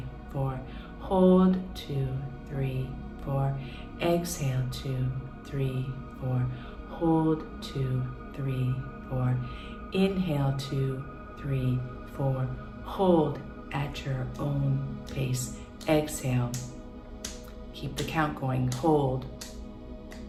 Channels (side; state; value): both; identical; correlation 1.00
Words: 4. Hold, 2, 3, 4. Exhale, 2, 3, 4. Hold, 2, 3, 4. Inhale, 2, 3, 4. Hold at your own pace. Exhale. Keep the count going. Hold.